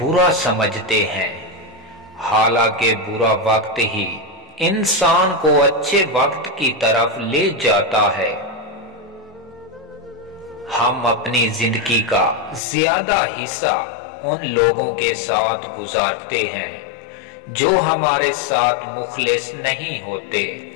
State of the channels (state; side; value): drops out; right; at 12.6 s